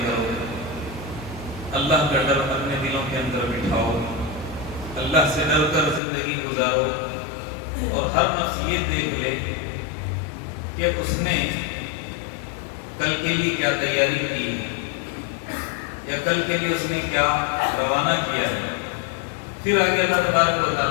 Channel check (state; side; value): drops out; right; at 6.0 s